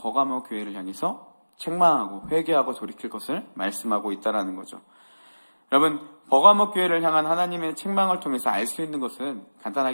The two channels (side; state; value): both; inverted; correlation -1.00